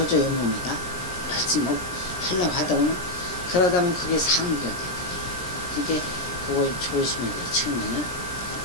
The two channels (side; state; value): right; late; 17 ms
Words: 몸에다 열심히 하려고 하다 보면 그러다 보면 그게 상기가 돼요. 그러니까 그걸 조심해야 돼요. 처음에는